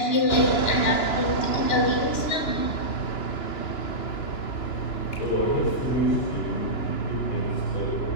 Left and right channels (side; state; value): right; late; 2.9 ms